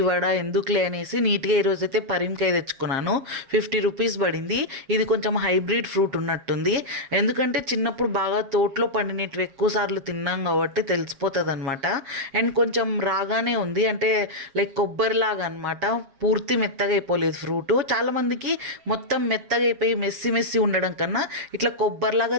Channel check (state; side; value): late; left; 7.4 ms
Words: వడ ఎందుకులే అనేసి నీట్గా ఈరోజైతే పరింకాయ తెచ్చుకున్నాను. 50 రూపీస్ పడింది. ఇది కొంచెం హైబ్రిడ్ ఫ్రూట్ ఉన్నట్టుంది. ఎందుకంటే చిన్నప్పుడు బాగా తోటలో పండినవి ఎక్కువ సార్లు తిన్నాం కాబట్టి తెలిసిపోతుంది అనమాట. అండ్ కొంచెం రాగానే ఉంది, అంటే లైక్ కొబ్బరిలాగా అనమాట. పూర్తి మెత్తగా అయిపోలేదు ఫ్రూట్. చాలామందికి మొత్తం మెత్తగా అయిపోయి మెస్సి మెస్సి ఉండడం కన్నా ఇట్లా